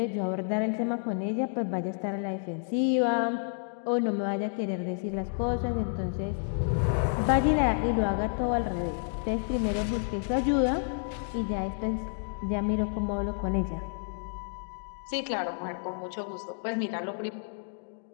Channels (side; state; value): right; silent; digital silence